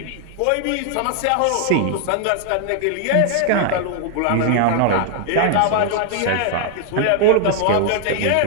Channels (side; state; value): both; different; correlation 0.00